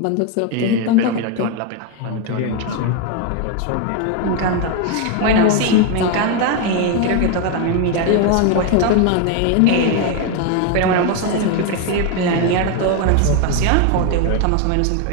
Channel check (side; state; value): both; different; correlation 0.01